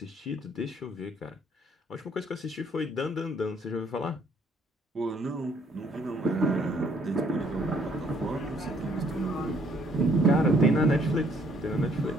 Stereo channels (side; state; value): both; normal; correlation 0.64